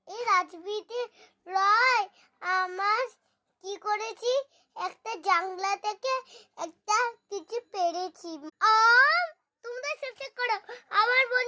এই রাজবীতি রয়, আমার কি করেছি, একটা জাংলা থেকে একটা কিছু পেরেছি। তোমরা শেষ করো, আমার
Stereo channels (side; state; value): both; identical; correlation 1.00